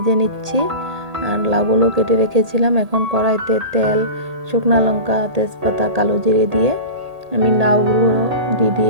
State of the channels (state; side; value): late; left; 1.8 ms